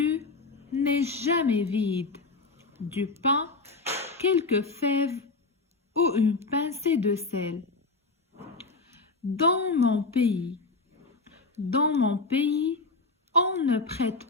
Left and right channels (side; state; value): right; quieter; 3.7 dB